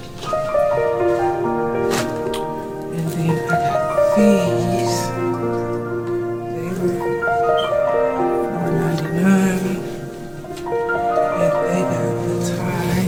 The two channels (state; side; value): identical; both; correlation 1.00